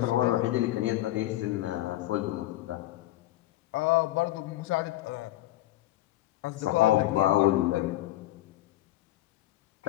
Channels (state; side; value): quieter; right; 15.7 dB